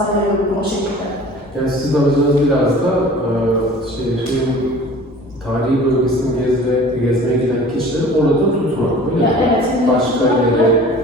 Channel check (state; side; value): normal; both; correlation 0.45